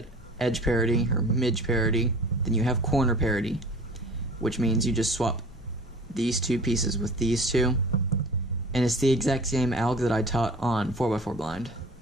edge parity or midge parity, then you have corner parity, which means you just swap these 2 pieces with these 2, and it's the exact same alg that I taught on 4x4 blind.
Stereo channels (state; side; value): normal; both; correlation 0.43